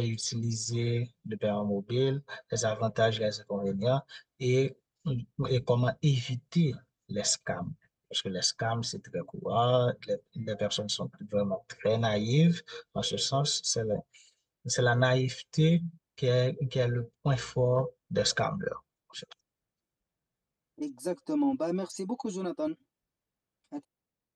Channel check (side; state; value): both; identical; correlation 1.00